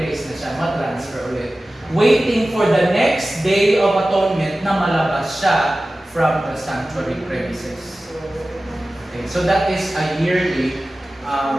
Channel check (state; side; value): normal; both; correlation 0.96